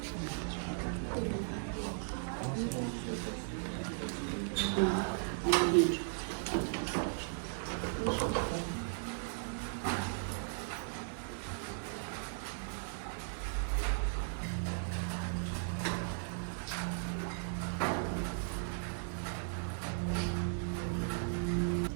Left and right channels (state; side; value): silent; left; digital silence